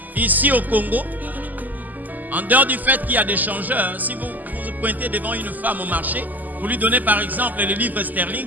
Ici au Congo, En dehors du fait qu'il y a des changeurs, si vous vous pointez devant une femme au marché, vous lui donnez par exemple les livres sterling,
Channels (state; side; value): late; left; 0.083 ms